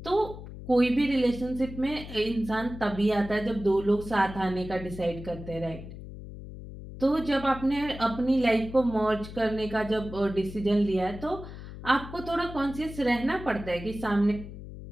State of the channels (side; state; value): left; noise; hum, 12 dB below the sound